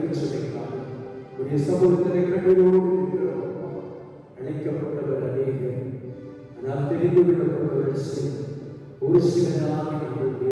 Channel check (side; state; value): both; identical; correlation 1.00